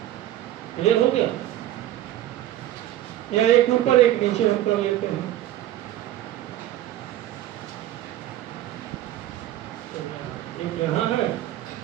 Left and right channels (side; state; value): left; quieter; 13.5 dB